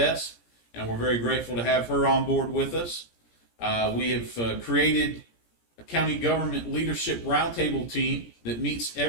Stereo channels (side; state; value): right; late; 17 ms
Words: and we're very grateful to have her on board with us. We have created a county government leadership roundtable team that meets